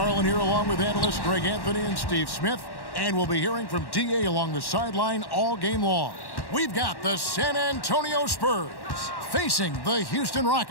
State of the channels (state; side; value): late; right; 1.1 ms